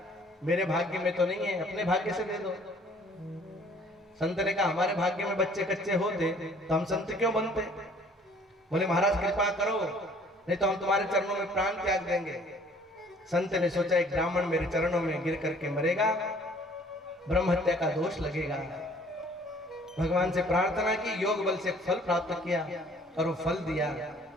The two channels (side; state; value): both; normal; correlation 0.56